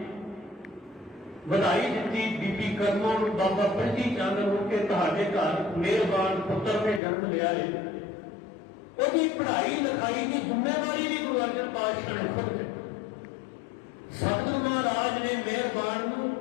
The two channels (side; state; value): right; drops out; at 7.0 s